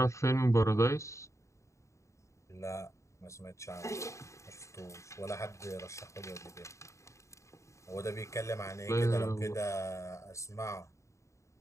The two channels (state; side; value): late; right; 0.14 ms